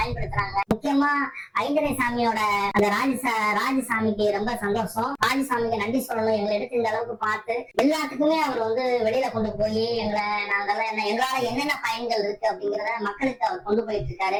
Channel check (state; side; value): identical; both; correlation 1.00